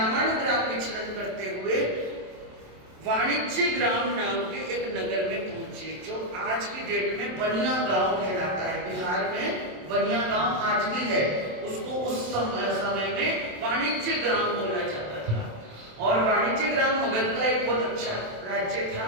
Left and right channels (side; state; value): left; late; 27 ms